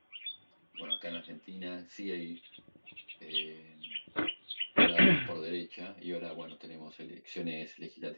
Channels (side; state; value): both; inverted; correlation -1.00